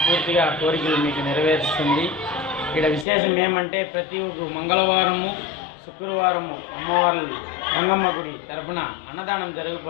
ఆ కోరికలు మీకు నెరవేరుస్తుంది. ఇక్కడ విశేషం ఏమంటే, ప్రతి ఒక్క మంగళవారము, శుక్రవారము అమ్మవారి గంగమ్మ గుడి తరపున అన్నదానం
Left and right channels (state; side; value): drops out; right; at 3.1 s